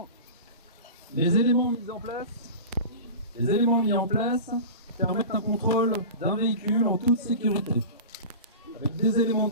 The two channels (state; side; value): inverted; both; correlation -0.32